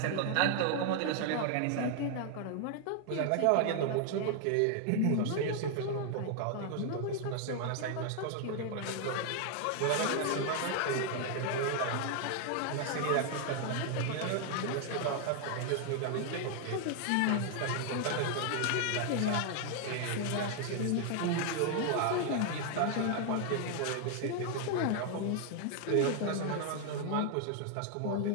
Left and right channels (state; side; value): different; both; correlation 0.00